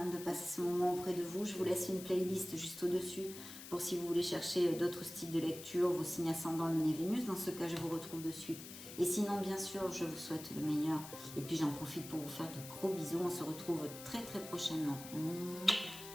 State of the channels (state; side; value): noise; left; hiss, 13 dB below the sound